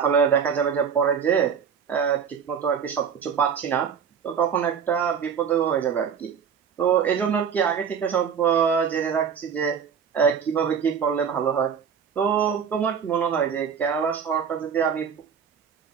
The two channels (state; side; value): quieter; left; 7.1 dB